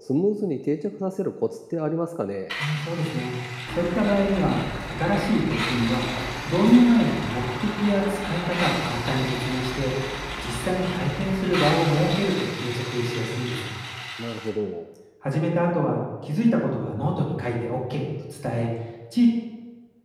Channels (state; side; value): identical; both; correlation 1.00